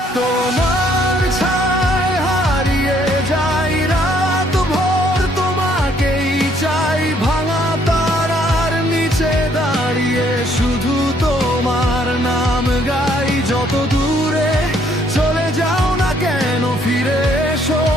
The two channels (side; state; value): both; normal; correlation 0.66